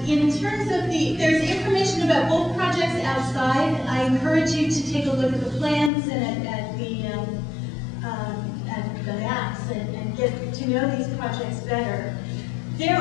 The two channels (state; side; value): drops out; right; at 5.9 s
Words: In terms of there's information about both projects outside. I encourage you to take a look at the plans and at the maps and get to know these projects better. There